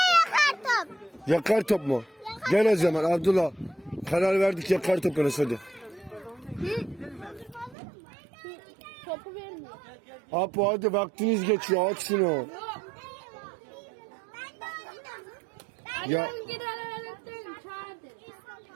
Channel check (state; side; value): drops out; left; at 7.8 s